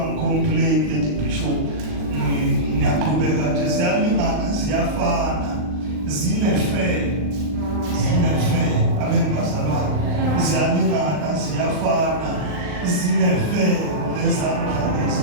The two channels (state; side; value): late; left; 39 ms